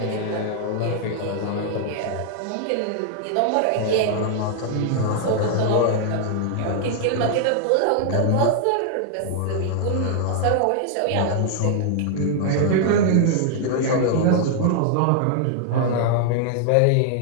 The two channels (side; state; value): both; different; correlation 0.00